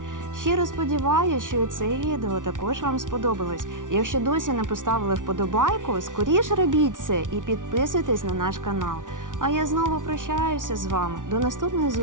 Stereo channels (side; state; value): left; late; 0.88 ms